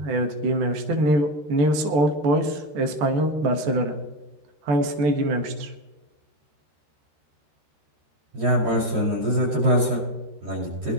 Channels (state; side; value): late; left; 13 ms